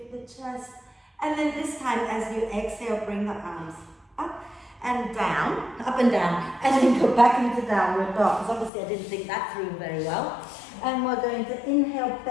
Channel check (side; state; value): right; drops out; at 8.7 s